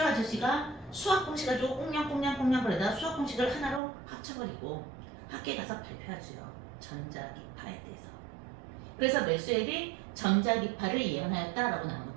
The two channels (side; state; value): left; drops out; at 3.8 s